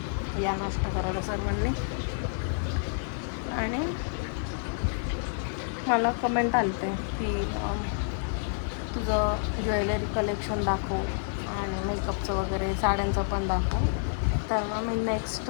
या नाश्ता करायला सर्वांनी. आणि मला कमेंट आलते की तुझं ज्वेलरी कलेक्शन दाखव आणि मेकअपचं वगैरे साड्यांचं पण दाखव. तर मग मी नेक्स्ट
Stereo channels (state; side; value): silent; right; 59 dB below the other